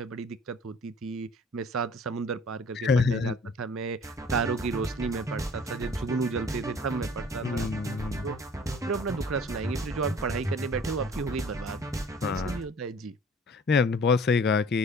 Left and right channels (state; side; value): normal; both; correlation 0.50